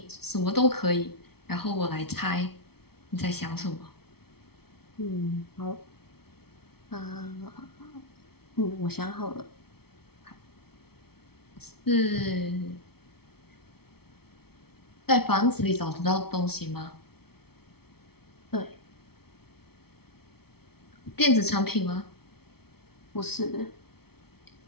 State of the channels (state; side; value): late; right; 0.95 ms